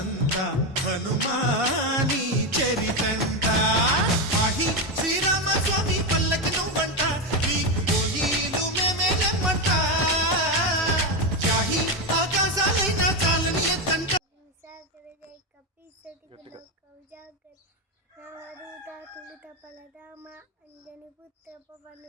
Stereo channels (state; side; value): normal; both; correlation 0.11